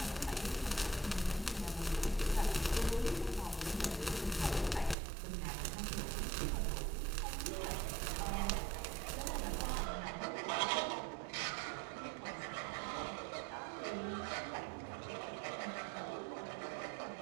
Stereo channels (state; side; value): drops out; left; at 5.0 s